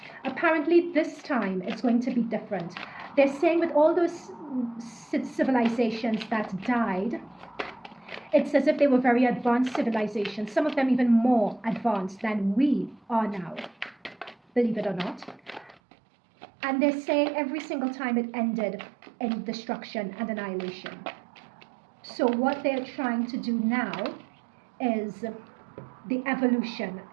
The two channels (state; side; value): drops out; left; at 15.8 s